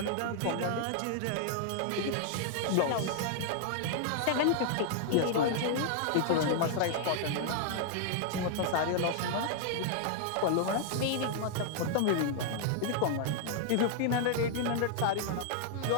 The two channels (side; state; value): both; different; correlation 0.00